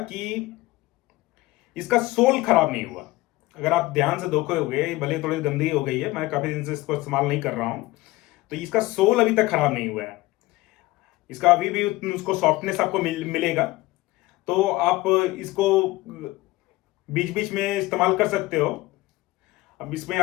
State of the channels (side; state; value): right; quieter; 19.3 dB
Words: कि इसका सोल खराब नहीं हुआ। अगर आप ध्यान से देखोगे, भले थोड़ी गंदी हो गई है, मैं काफी दिन से इसको इस्तेमाल नहीं कर रहा हूं, तो इसका सोल अभी तक खराब नहीं हुआ है। इसका अभी भी उसको सॉफ्टनेस आपको मिलेगा। तो आप इसको बीच बीच में इस्तेमाल कर सकते हो। अब इसमें